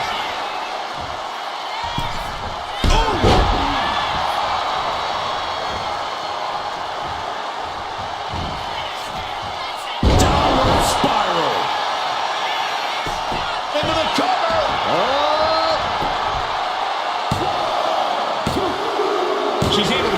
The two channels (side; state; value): both; identical; correlation 1.00